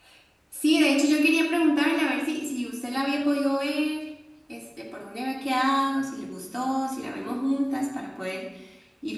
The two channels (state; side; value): identical; both; correlation 1.00